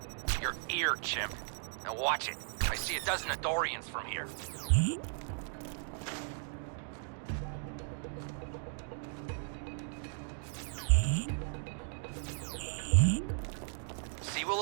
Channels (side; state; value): left; silent; 54 dB below the other